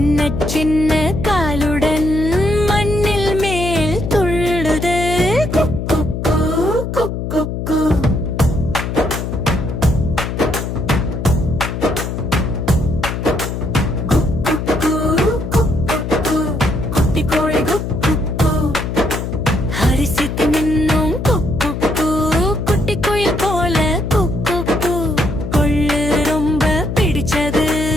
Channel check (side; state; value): left; noise; hum, 4 dB below the sound